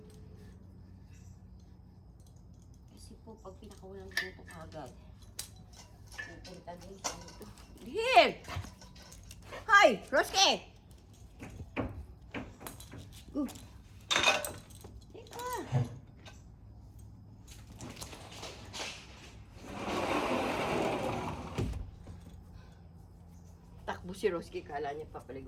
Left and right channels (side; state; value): both; identical; correlation 1.00